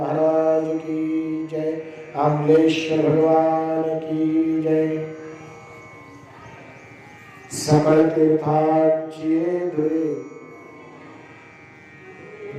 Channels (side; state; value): both; identical; correlation 1.00